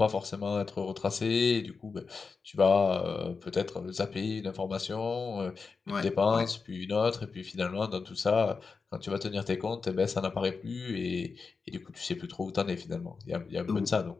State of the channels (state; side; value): quieter; right; 4.8 dB